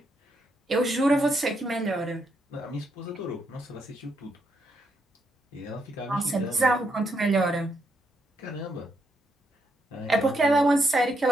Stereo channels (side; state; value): both; normal; correlation 0.78